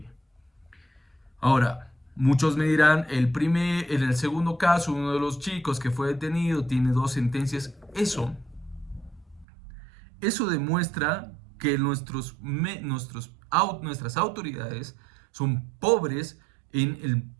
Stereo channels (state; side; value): drops out; left; at 9.5 s